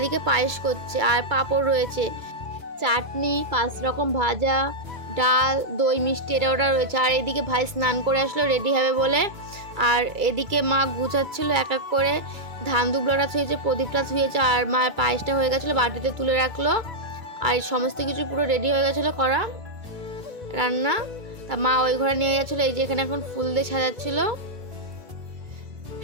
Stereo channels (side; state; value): left; late; 2.2 ms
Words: পায়েস করছে, আর পাঁপড় রয়েছে, চাটনি, 5 রকম ভাজা, ডাল, দই, মিষ্টি এটা ওটা রয়েছে। আর এদিকে ভাই স্নান করে আসলো রেডি হবে বলে। আর এদিকে মা গুছাচ্ছিল এক এক করে, ধান দুবলাটা ছুঁয়েছে, প্রদীপটা ছুঁয়েছে, আর মায়ের পায়েসটা হয়ে গেছিলো, বাটিতে তুলে রাখলো। আর সমস্ত কিছু পুরো রেডি হয়ে গেছিলো করা রান্না। তা মা ওই ঘরে নিয়ে গেছিলো। এই যে এখানে এখন ফুল দিয়ে সাজাচ্ছিল,